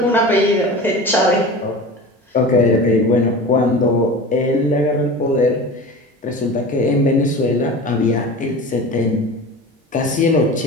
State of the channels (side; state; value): both; normal; correlation 0.34